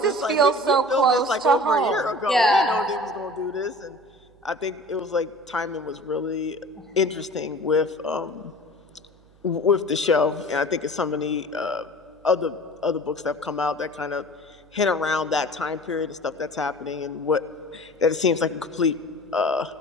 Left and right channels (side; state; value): right; noise; hum, 29 dB below the sound